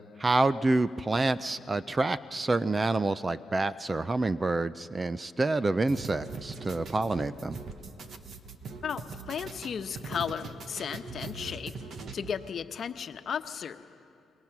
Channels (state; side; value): normal; both; correlation 0.91